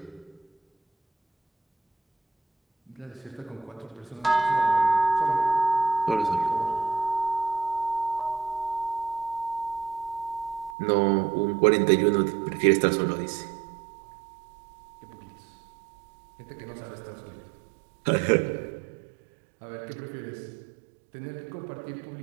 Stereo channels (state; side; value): drops out; left; at 10.8 s